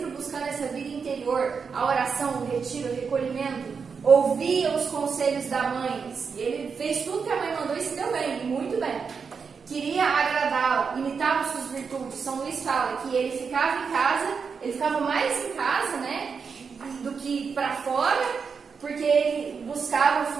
buscando essa vida interior, a oração, o retiro, o recolhimento, ouvia os conselhos da mãe. Ele fez tudo que a mãe mandou e se deu bem, muito bem. Queria agradá-la, imitava suas virtudes. São Luís fala que ele ficava em casa, ele ficava mais em casa, né, do que para fora, porque ele buscava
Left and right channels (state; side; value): quieter; left; 5.7 dB